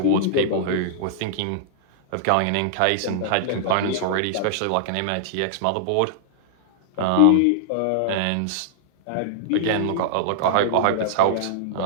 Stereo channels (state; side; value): different; both; correlation -0.01